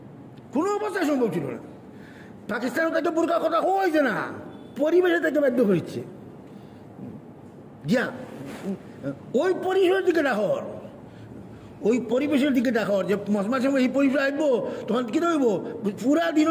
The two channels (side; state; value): both; identical; correlation 1.00